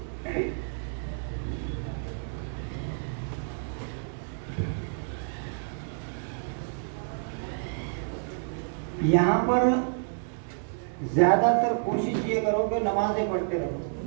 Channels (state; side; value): silent; left; digital silence